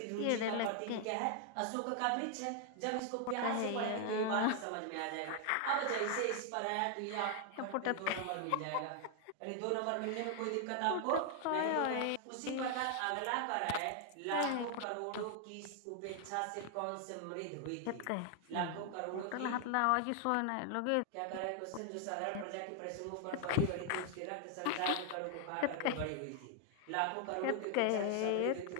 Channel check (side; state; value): both; different; correlation 0.00